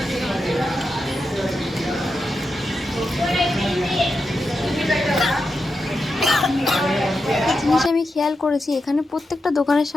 একটা জিনিস আমি খেয়াল করেছি, এখানে প্রত্যেকটা দোকানের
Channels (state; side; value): normal; both; correlation 0.88